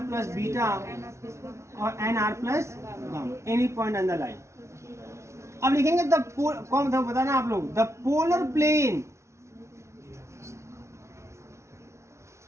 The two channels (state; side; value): late; left; 0.13 ms